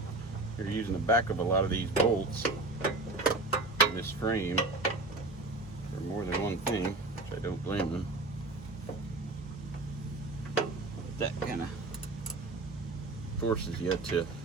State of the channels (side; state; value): left; quieter; 3.1 dB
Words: You're using the back of a lot of these bolts in this frame for more than one thing, which I don't blame them. That kind of forces you to